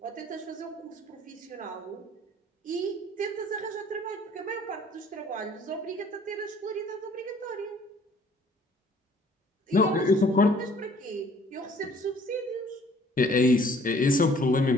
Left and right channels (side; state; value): both; normal; correlation 0.56